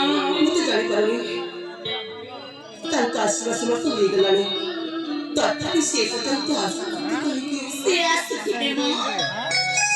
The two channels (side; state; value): both; identical; correlation 1.00